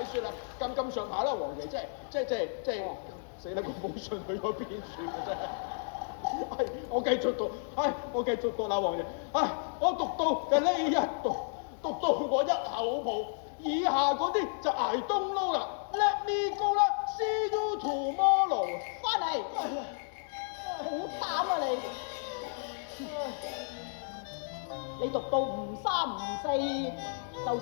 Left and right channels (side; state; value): right; silent; digital silence